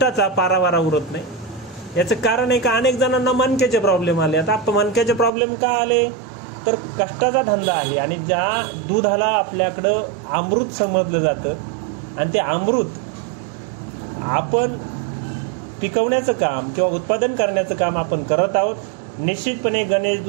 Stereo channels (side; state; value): left; drops out; at 5.3 s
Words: पारावारा उरत नाही। याचं कारण आहे का अनेक जणांना मणक्याचे प्रॉब्लेम आले। आता मणक्याचे प्रॉब्लेम का आले तर कष्टाचा धंदा आहे आणि ज्या दुधाला आपल्याकडं अमृत समजलं जातं आणि ते अमृत आपण पिकवण्याचं काम किंवा उत्पादन करण्याचं काम आपण करत आहोत। निश्चितपणे गणेश